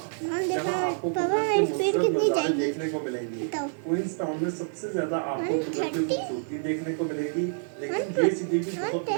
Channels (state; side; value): silent; left; 60 dB below the other